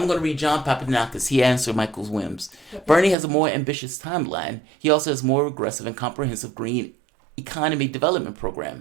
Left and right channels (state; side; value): drops out; left; at 3.2 s